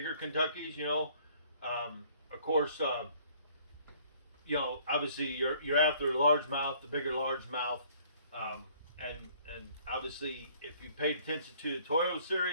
Kentuckies, of course, obviously you're after largemouth, the bigger largemouth, and obviously if you paid attention to the Toyo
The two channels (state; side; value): inverted; both; correlation -0.58